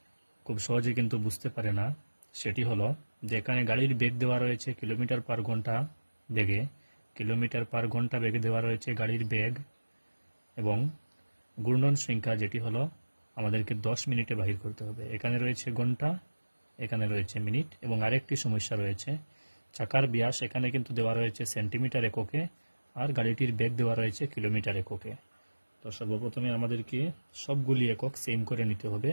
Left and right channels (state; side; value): inverted; both; correlation -1.00